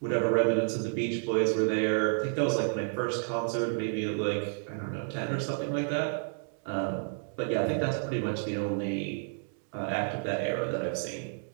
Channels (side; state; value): left; silent; digital silence